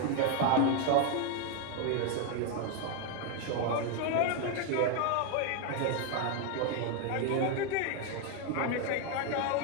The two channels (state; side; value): different; both; correlation 0.01